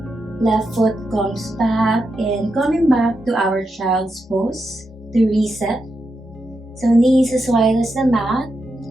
Left foot comes back and coming back to our child's pose to reset. So knees as wide as the mat.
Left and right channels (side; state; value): both; normal; correlation 0.86